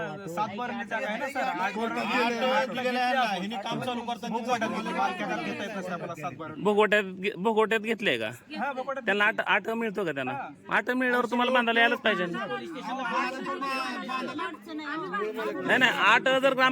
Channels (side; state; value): both; identical; correlation 1.00